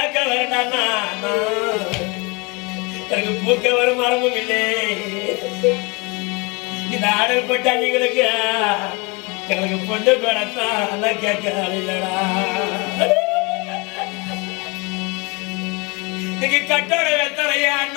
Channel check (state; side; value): quieter; right; 28.6 dB